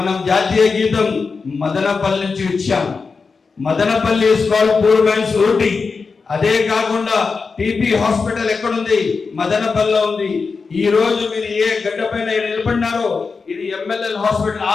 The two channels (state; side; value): quieter; right; 4.7 dB